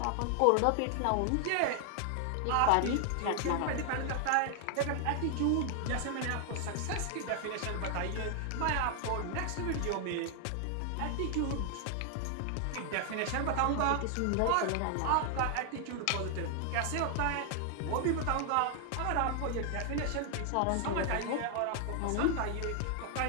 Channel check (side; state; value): both; different; correlation 0.00